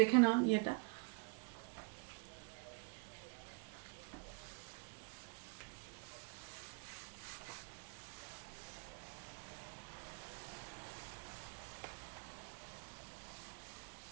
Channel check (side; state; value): left; quieter; 33.2 dB